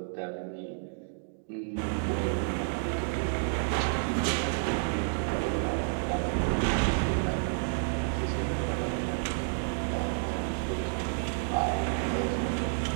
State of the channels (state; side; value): silent; left; digital silence